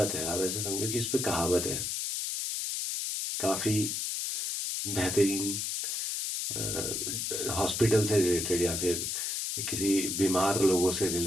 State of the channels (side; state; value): left; noise; hiss, 1 dB below the sound